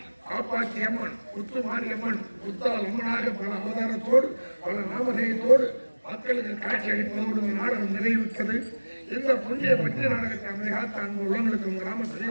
காப்பாற்றி அம்மன் முத்து மாரியம்மன் முத்தால் அம்மனாக பல அவதாரத்தோடு பல நாமதேயத்தோடு மக்களுக்கு காட்சி அளிப்பதோடு நாடகம் நிறைவுற்றது. இந்த புண்ணிய பற்றிய நாடகத்தை அமைதிகாத்த அன்பு உள்ளவர்களுக்கும் கிராம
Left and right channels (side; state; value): both; inverted; correlation -1.00